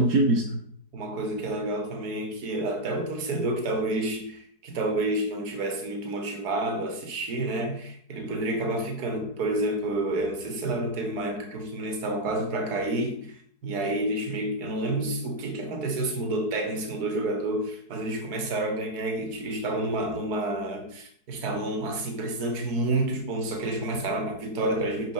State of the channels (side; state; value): left; late; 4.7 ms